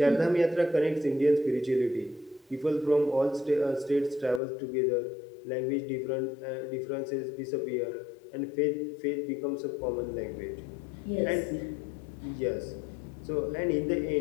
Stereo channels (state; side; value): drops out; right; at 4.4 s